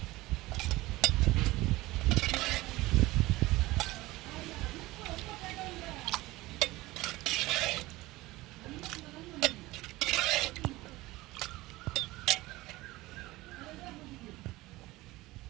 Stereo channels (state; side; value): quieter; left; 19.3 dB